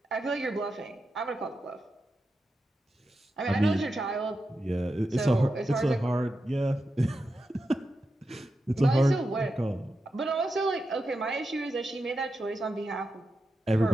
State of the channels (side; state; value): both; normal; correlation 0.89